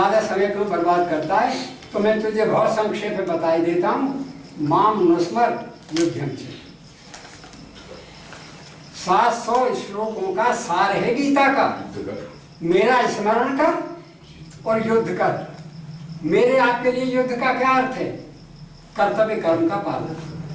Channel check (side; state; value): both; identical; correlation 1.00